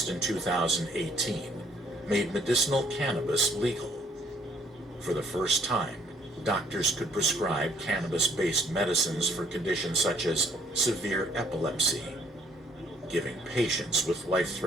in 2018 made medicinal cannabis legal. For the first time, doctors could prescribe cannabis-based medicines for conditions such as severe epilepsy, giving patients with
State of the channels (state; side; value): normal; both; correlation 0.64